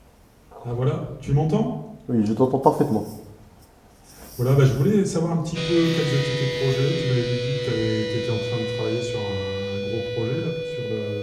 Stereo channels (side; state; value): both; identical; correlation 1.00